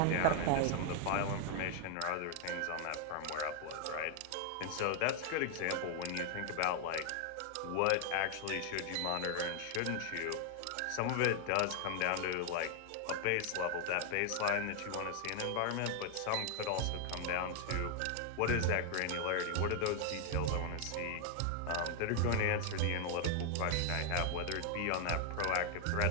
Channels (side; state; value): both; different; correlation 0.00